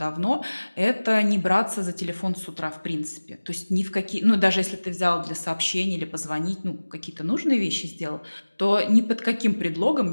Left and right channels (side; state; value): both; inverted; correlation -1.00